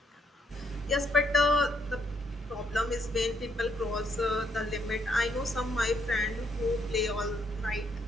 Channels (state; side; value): normal; both; correlation 0.73